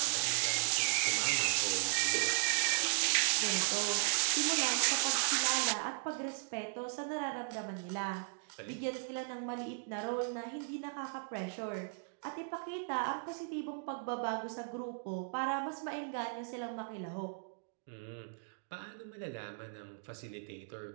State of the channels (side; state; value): left; silent; digital silence